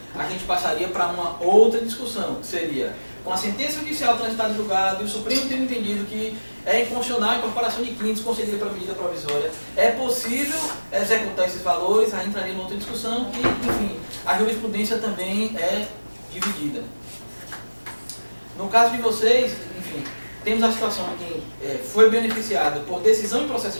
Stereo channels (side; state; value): both; inverted; correlation -1.00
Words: a gente passaria para uma outra discussão, que seria, com a sentença judicial transitada em julgado e o Supremo tendo entendido que é inconstitucional a incorporação de quintos concedida para medida provisória, é possível executar esses valores, aí entraria em outra discussão que, enfim, a jurisprudência também é dividida. No caso de vocês, enfim, temos a situação de quem foi beneficiado por decisão em processo